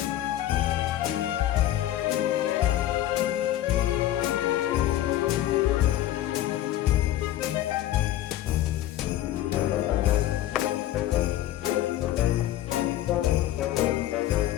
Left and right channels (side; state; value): right; quieter; 13.4 dB